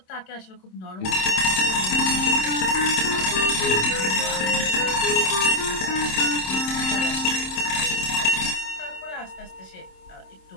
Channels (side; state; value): right; late; 27 ms